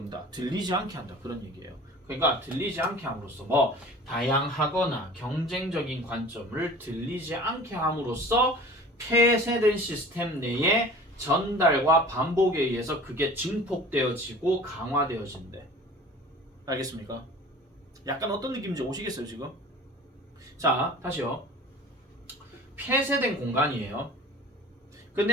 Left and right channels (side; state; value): both; normal; correlation 0.42